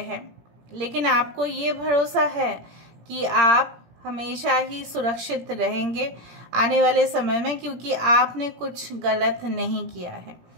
लेकिन आपको ये भरोसा है कि आप हमेशा ही सुरक्षित रहेंगे आने वाले समय में, क्योंकि आपने कुछ गलत नहीं किया है।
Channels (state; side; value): late; left; 17 ms